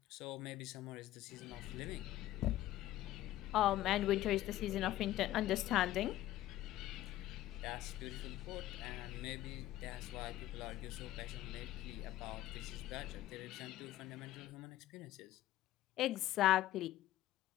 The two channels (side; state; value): right; quieter; 14.3 dB